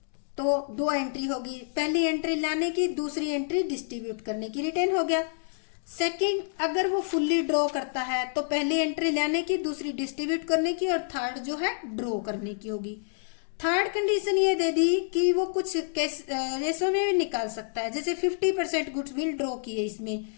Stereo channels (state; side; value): silent; right; digital silence